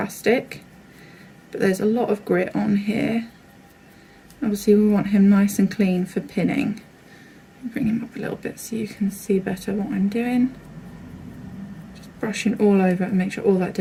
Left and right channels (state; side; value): identical; both; correlation 1.00